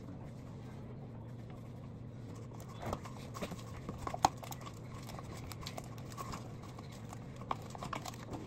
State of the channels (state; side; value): identical; both; correlation 1.00